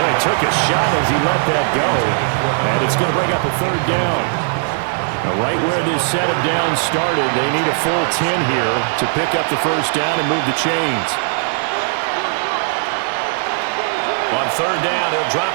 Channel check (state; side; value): silent; left; digital silence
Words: he took a shot as he let that go. And it's going to bring up a 3rd down. Now, right where this set of downs started, they need a full 10 here to pick up the 1st down and move the chains. On 3rd down, he'll drop